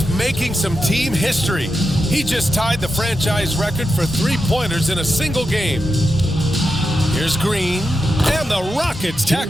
making some team history. He just tied the franchise record for three-pointers in a single game. Here's Green, and the Rockets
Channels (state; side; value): normal; both; correlation 0.88